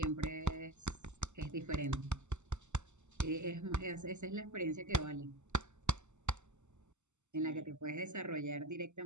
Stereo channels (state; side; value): late; left; 0.83 ms